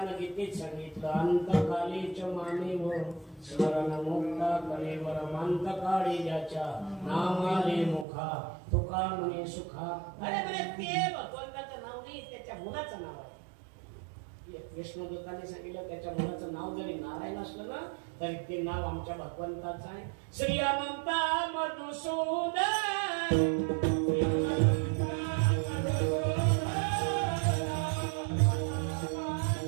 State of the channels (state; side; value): drops out; left; at 8.1 s